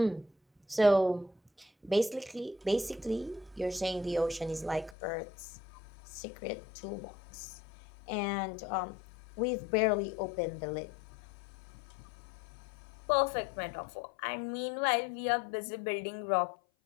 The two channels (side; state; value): right; drops out; at 5.0 s